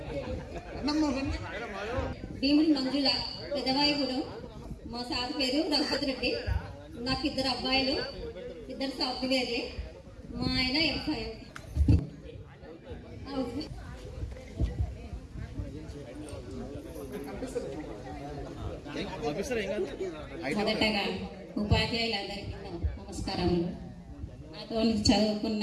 Bhimudi Manjula పెదవాయిగూడెం. మా సార్ పేరు రఘుపతి రెడ్డి. నాకు 2 అబ్బాయిలు, 2 సాఫ్ట్వేర్లే. మా ఆయన ఎంఫై. మొదటగా ఉపాధ్యాయులందరికీ నమస్కారములు. నాతో చదువుకున్న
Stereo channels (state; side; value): identical; both; correlation 1.00